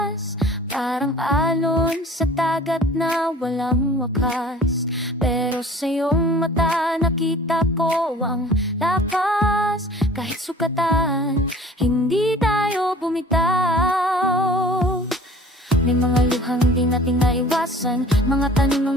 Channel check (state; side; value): normal; both; correlation 0.47